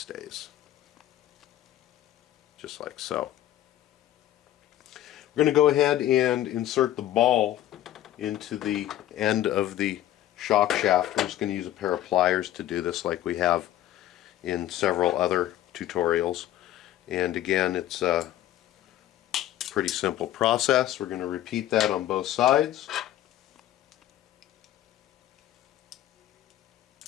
Just like so. We're going to go ahead and insert the ball into the end of the shock shaft. We're just going to use a pair of pliers to do this like we have in several other tutorials. And again, it's a pretty simple process. We're going to repeat that on both sides.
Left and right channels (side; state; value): right; quieter; 13.2 dB